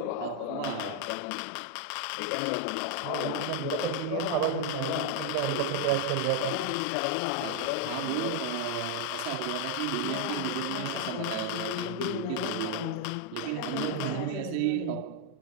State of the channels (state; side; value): different; both; correlation 0.00